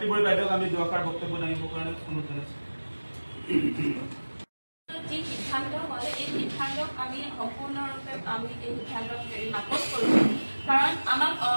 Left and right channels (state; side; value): inverted; both; correlation -1.00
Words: বড়ি বাইদেউক আমি দুআষাৰ বক্তব্য দাঙিবৰ কাৰণে অনুৰোধ জনাইছোঁ। যি সিদ্ধান্ত হয় এই সিদ্ধান্তক আমি সম্পূৰ্ণৰূপে আমি এই সিদ্ধান্তক নাকচ কৰিছোঁ। কাৰণ আমাক